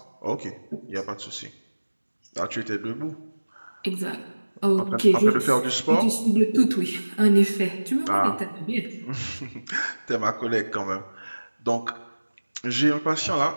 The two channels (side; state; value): both; inverted; correlation -1.00